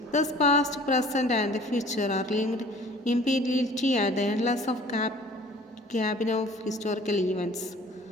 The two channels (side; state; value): both; normal; correlation 0.50